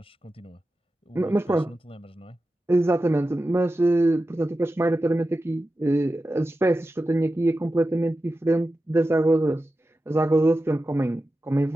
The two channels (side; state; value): both; normal; correlation 0.92